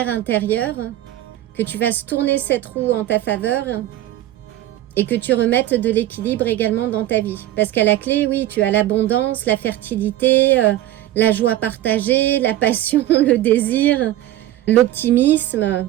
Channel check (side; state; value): left; quieter; 14.1 dB